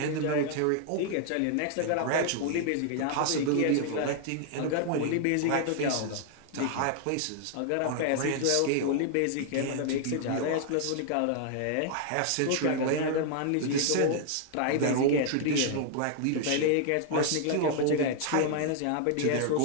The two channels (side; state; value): both; different; correlation 0.00